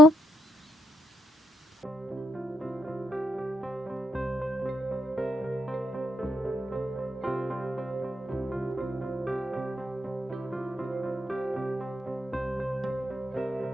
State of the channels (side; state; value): both; normal; correlation 0.78